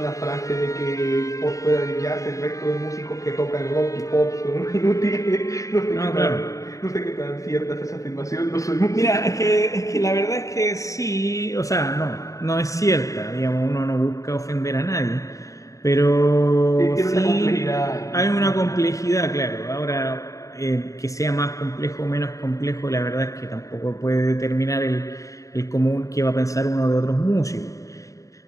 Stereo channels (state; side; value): late; right; 0.16 ms